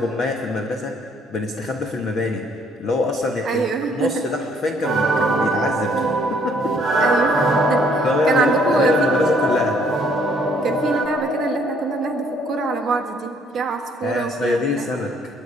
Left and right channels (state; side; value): normal; both; correlation 0.64